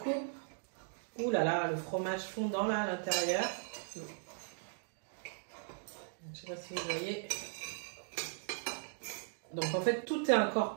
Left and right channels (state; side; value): silent; left; digital silence